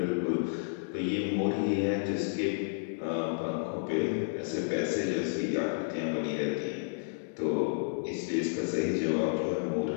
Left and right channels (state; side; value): silent; right; digital silence